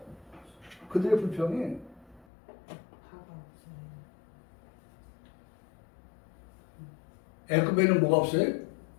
그들의 불평이 애굽에는 뭐가 없어요?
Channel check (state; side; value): drops out; right; at 2.2 s